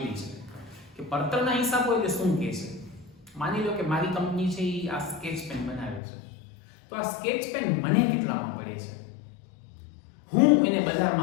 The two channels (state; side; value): drops out; right; at 6.0 s